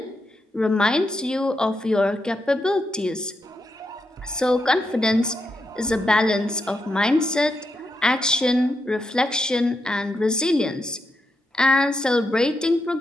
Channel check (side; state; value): both; normal; correlation 0.83